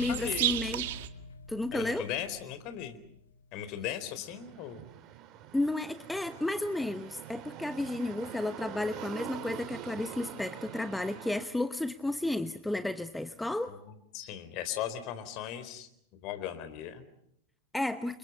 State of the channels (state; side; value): normal; both; correlation 0.69